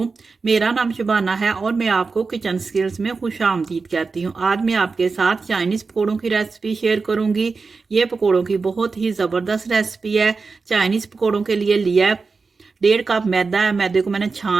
मेरा नाम शबाना है और मैं आपको किचन स्किल्स में खुशामदीद कहती हूँ। आज मैं आपके साथ चाइनीज़ पकौड़ों की रेसिपी शेयर करूँगी। ये पकौड़ों की बहुत ही ज़बरदस्त रेसिपी है। चाइनीज़ पकौड़ों के लिए लिया है 1.5 कप मैदा है। मैदे को मैंने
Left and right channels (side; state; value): left; quieter; 4.4 dB